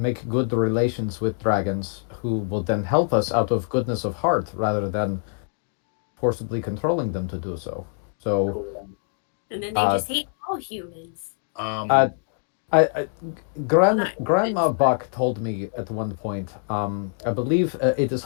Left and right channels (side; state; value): right; silent; 56 dB below the other